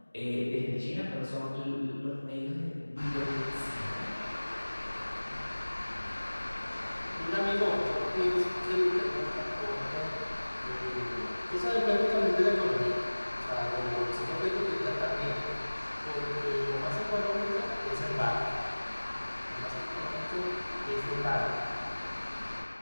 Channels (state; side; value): inverted; both; correlation -1.00